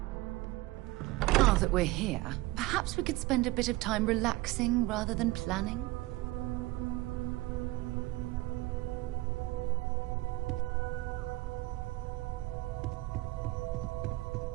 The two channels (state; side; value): quieter; left; 19.9 dB